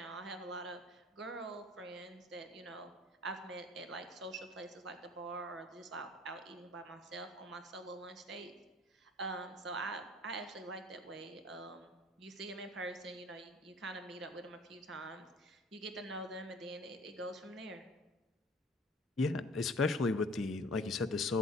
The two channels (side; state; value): both; normal; correlation 0.51